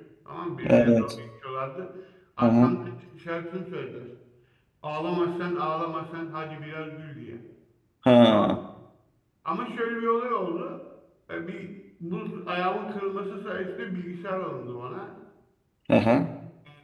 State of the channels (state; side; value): identical; both; correlation 1.00